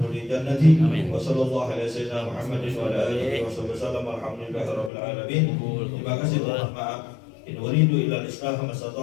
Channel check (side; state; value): right; drops out; at 4.9 s